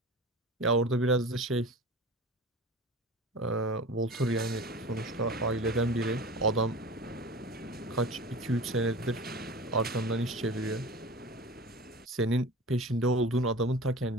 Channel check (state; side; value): normal; both; correlation 0.35